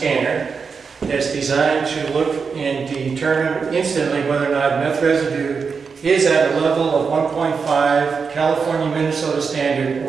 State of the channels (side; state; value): left; quieter; 5.5 dB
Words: that's designed to look and determine instantly whether or not meth residue is at a level of 1.5 California Minnesota standard